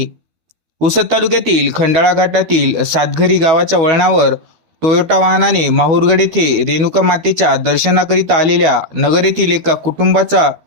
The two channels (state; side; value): late; left; 13 ms